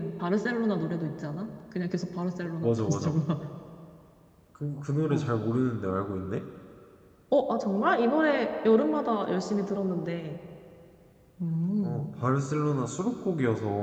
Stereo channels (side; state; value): both; identical; correlation 1.00